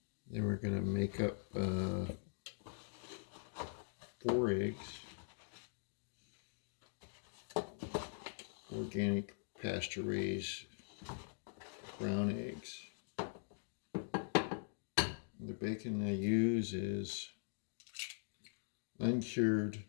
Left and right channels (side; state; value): right; silent; digital silence